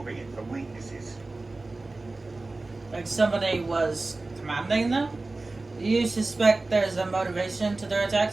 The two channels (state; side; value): quieter; left; 3.2 dB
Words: it for weaknesses. Like somebody was commanding them? Do you suspect there's a motivation to their